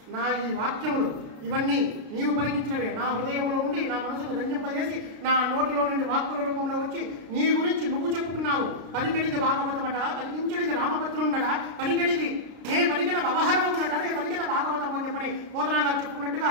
నా ఈ వాక్యములు ఇవన్నీ నీవు పలికించినవే, నా హృదయంలో ఉండి నా మనసును రంజింపజేసి నా నోటిలో నుండి వాక్కుల రూపంలో వచ్చి నీ గురించి నువ్వు చెప్పుకున్నావు. పలికెడిది భాగవతమట, పలికించడిది రామభద్రుండట, పలికెడిది నే పలికిన వ్యవహారమునట, నే పలికిన భాగవతము అని చెప్పని పోతనా గారు చెప్పుకున్నట్టుగా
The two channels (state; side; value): late; left; 33 ms